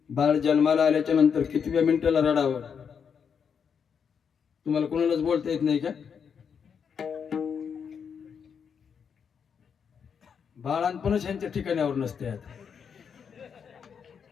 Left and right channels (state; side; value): quieter; right; 6.9 dB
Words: बाळ जन्माला आल्याच्या नंतर कितव्या मिनिटाला रडावं? तुम्हाला कोणालाच बोलता येत नाही का? बाळांपणच यांच्या ठिकाणावर नसते. आता